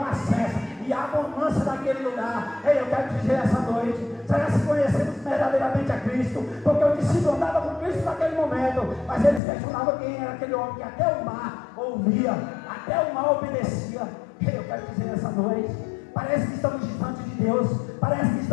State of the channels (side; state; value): right; drops out; at 9.4 s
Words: cessa e há bonança naquele lugar. Ei, eu quero dizer essa noite: será que conhecemos verdadeiramente a Cristo? Porque o discípulo andava com Cristo naquele momento, mas eles questionavam quem era aquele homem que até o mar ouvia, até o mar obedecia. Ei, eu quero dizer essa noite: parece que estamos distante de Deus, parece que